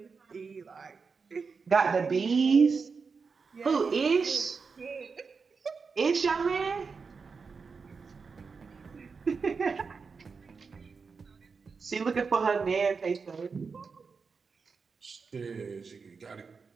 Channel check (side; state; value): left; quieter; 5.1 dB